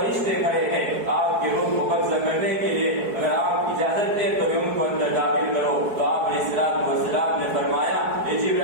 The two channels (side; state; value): left; late; 4.7 ms